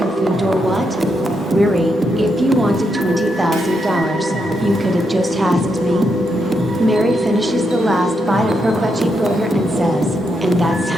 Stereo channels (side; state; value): both; normal; correlation 0.81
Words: food or what?" "Riri, if you wanted $20,000, you could have just asked me." Mary finishes the last bite of her veggie burger and says, "And that's